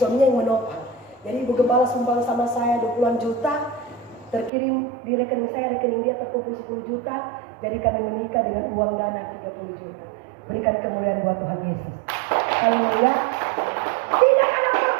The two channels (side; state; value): left; drops out; at 4.5 s